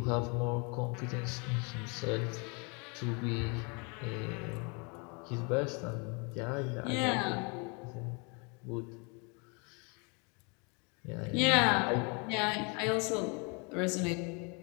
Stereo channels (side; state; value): right; quieter; 32.9 dB